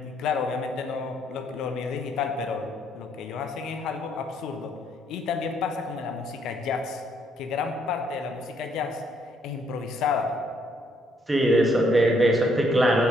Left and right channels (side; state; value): both; normal; correlation 0.70